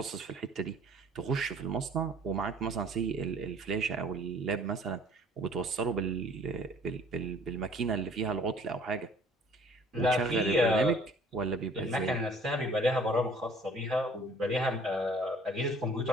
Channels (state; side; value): normal; both; correlation 0.54